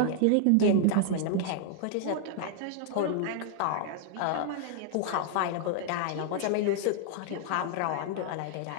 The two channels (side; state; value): both; different; correlation 0.00